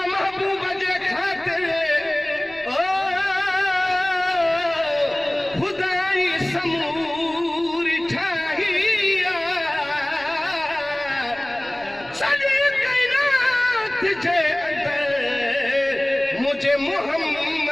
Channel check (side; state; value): left; noise; rumble, 27 dB below the sound